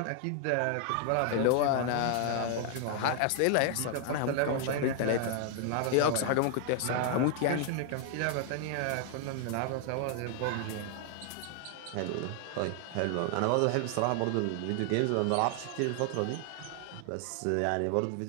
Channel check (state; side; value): different; both; correlation 0.00